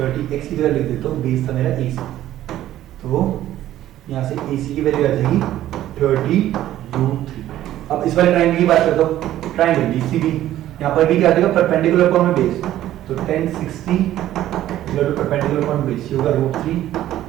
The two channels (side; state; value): left; quieter; 13.2 dB